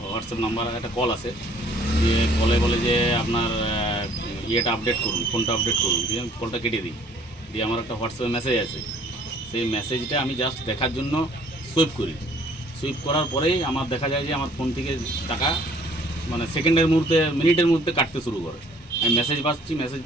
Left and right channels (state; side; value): normal; both; correlation 0.57